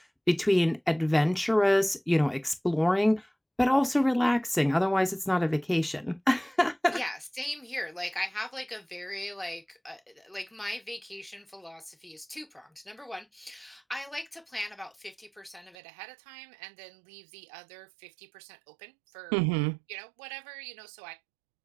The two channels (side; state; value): left; drops out; at 15.8 s